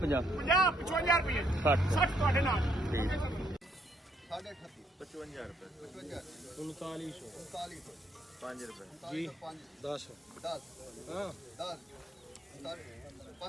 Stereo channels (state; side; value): normal; both; correlation 0.70